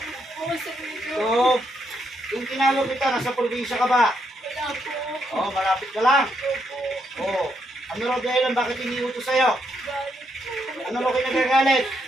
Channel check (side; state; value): both; normal; correlation 0.78